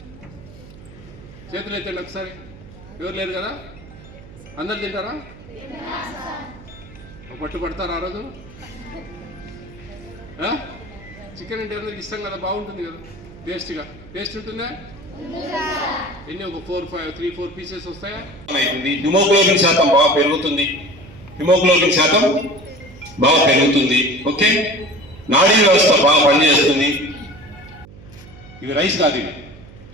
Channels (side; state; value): right; noise; hum, 19 dB below the sound